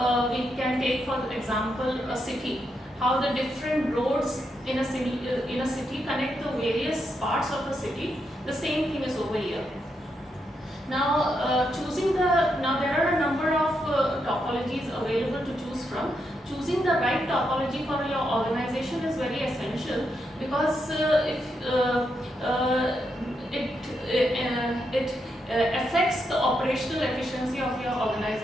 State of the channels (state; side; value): normal; both; correlation 0.82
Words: we can take for example a city, how the different roads in a city connect the various parts of the city. The same thing is over here. Now, there are a number of topologies available to choose from. Choosing the right topology for your organization is very essential because if it affects the operational efficiency of your